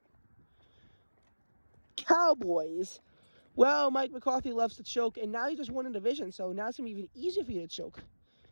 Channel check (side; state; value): both; inverted; correlation -1.00